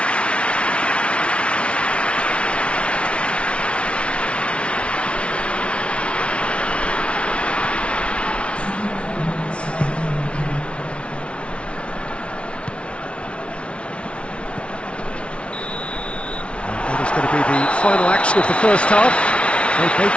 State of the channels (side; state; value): right; late; 0.060 ms